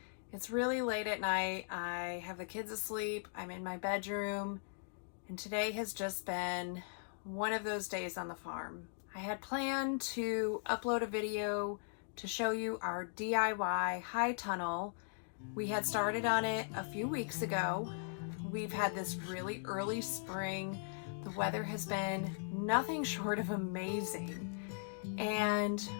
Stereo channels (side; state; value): right; silent; digital silence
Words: It's really late at night. I have the kids asleep. I'm in my bedroom, and today has just been one of those days on the farm. I had planned to upload a video to show you our DIY high tunnel. We had started on it a few weeks ago. We've had this really early spring. The weather has been nothing short of amazing. And